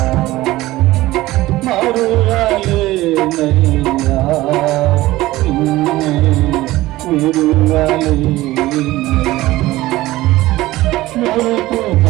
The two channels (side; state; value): left; quieter; 17.5 dB